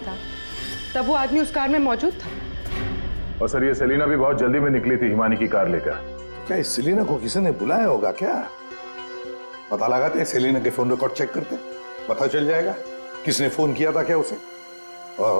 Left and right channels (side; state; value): both; inverted; correlation -1.00